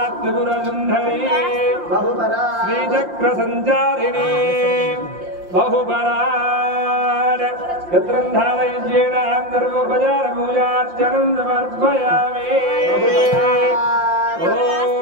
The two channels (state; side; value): late; left; 5.7 ms